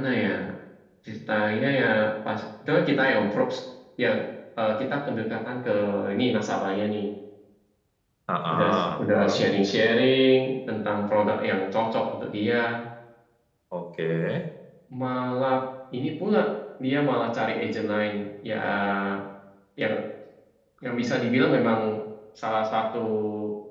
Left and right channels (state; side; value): identical; both; correlation 1.00